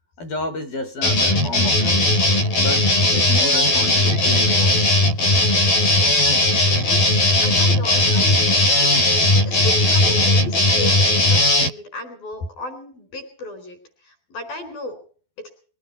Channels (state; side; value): late; right; 12 ms